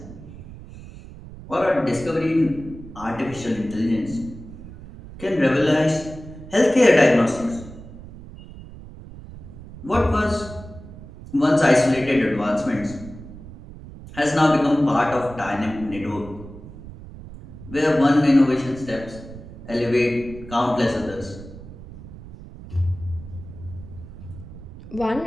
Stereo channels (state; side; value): noise; right; rumble, 15 dB below the sound